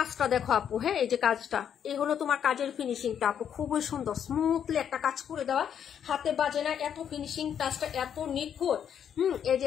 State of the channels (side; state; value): right; quieter; 8.7 dB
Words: দেখো আপু। হ্যাঁ, এই যে কাজটা, এই হলো তোমার কাজের ফিনিশিংটা আপু, খুবই সুন্দর স্মুথলি একটা কাজ করে দেওয়া, হাতে বাজে না, এত ফিনিশিং টাচটা এত নিখুঁত। এই যে